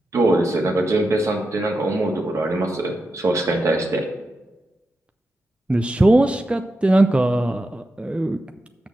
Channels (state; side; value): normal; both; correlation 0.89